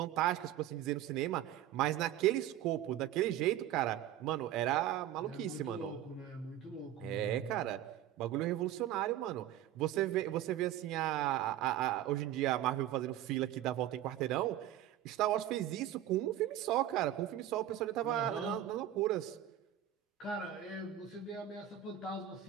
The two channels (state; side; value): quieter; left; 12.1 dB